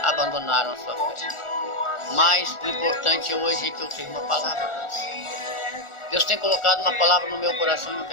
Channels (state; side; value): late; right; 1.4 ms